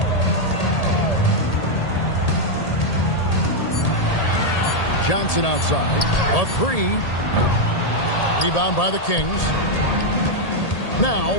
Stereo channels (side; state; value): right; late; 1.8 ms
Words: Johnson outside. A 3. Rebound by the Kings. Now